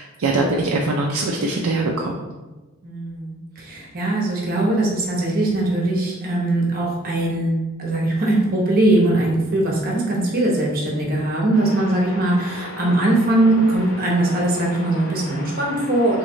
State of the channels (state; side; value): normal; both; correlation 0.61